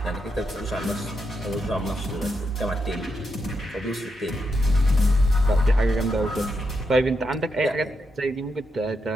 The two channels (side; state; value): both; normal; correlation 0.83